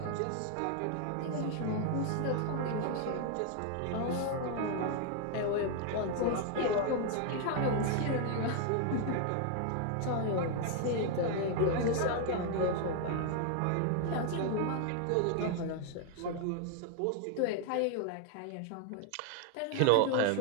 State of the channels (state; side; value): different; both; correlation 0.00